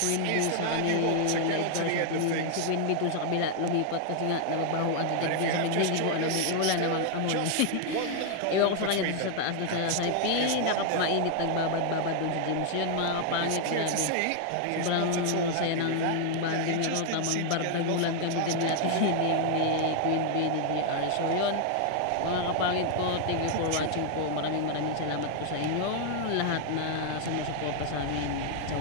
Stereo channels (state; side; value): different; both; correlation 0.00